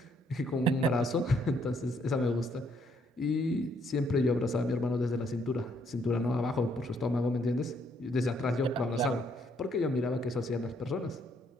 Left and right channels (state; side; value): normal; both; correlation 0.70